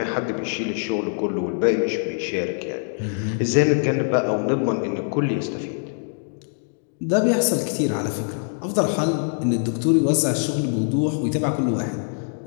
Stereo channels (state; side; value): silent; right; digital silence